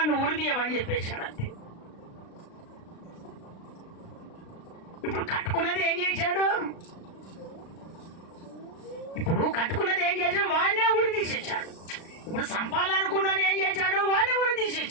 ఉరిదీయమని చెప్పేశాడు. అంతే. ఇప్పుడు కట్టుకున్నది ఏం చేశాడు? వాడినే ఉరి తీసేశాడు. ఇప్పుడు సంపాలనుకున్నది ఏం చేశాడు? వాడినే ఉరి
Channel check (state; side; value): late; right; 36 ms